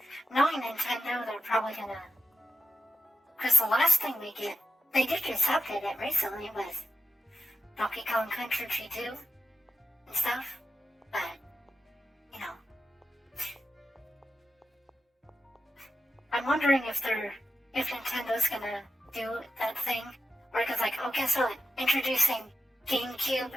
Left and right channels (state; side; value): normal; both; correlation 0.91